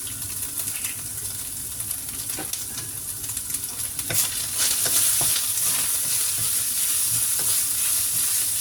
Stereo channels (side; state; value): both; identical; correlation 1.00